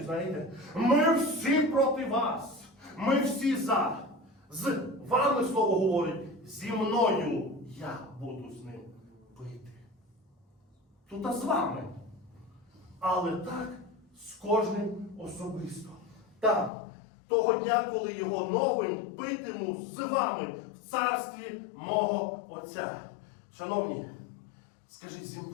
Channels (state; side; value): drops out; right; at 16.7 s